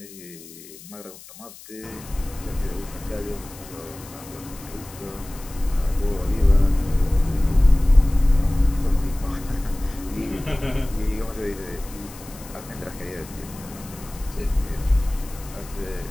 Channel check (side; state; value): left; noise; hiss, 18 dB below the sound